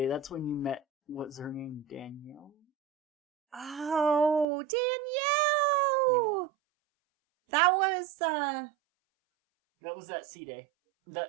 that's when you met, what's her name, Danielle? Oh, Danielle! Yeah. That was that sea day.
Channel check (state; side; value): drops out; left; at 4.5 s